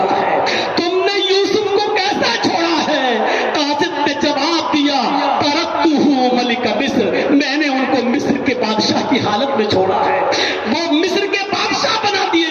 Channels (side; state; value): both; identical; correlation 1.00